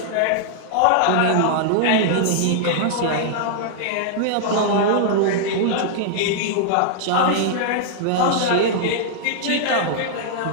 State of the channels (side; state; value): both; different; correlation -0.01